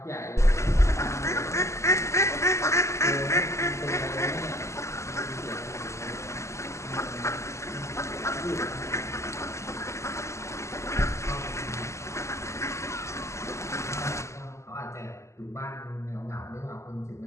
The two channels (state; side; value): late; right; 0.14 ms